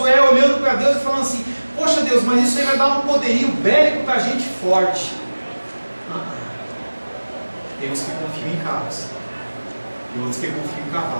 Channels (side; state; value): both; inverted; correlation -1.00